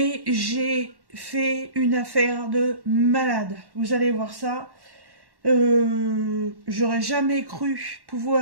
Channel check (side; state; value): left; late; 1.1 ms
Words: j'ai fait une affaire de malade. Vous allez voir ça. J'aurais jamais cru